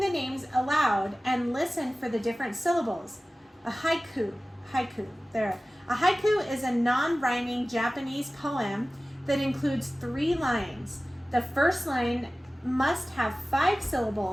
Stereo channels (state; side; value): normal; both; correlation 0.97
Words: names aloud and listen for the different syllables. A haiku, there. A haiku is a non-rhyming Japanese poem that includes 3 lines. The first line must have 5